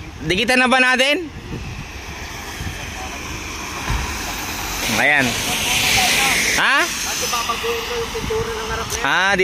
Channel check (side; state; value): both; identical; correlation 1.00